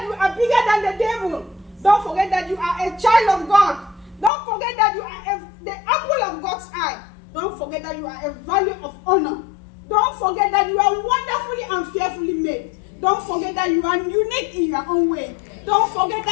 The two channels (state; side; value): drops out; right; at 4.3 s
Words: you are bigger than the devil. Don't forget that you are a child of God. Don't forget that you are the apple of God's eye. Don't forget that you are a value of honor. Don't forget that you are wonderfully and fearfully made. Don't forget that you are unique in your own way. Don't forget